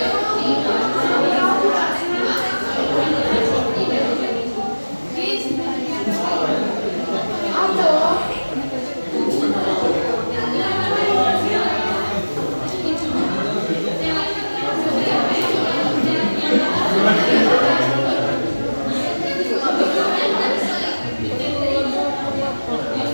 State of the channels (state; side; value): inverted; both; correlation -1.00